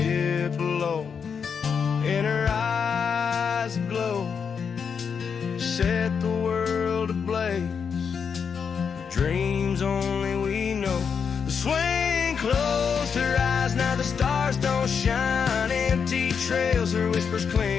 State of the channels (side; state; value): right; quieter; 6.4 dB